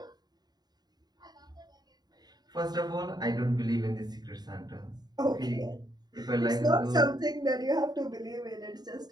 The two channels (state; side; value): late; left; 0.20 ms